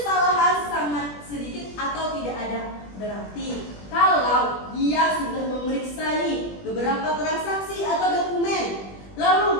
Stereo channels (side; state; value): right; late; 20 ms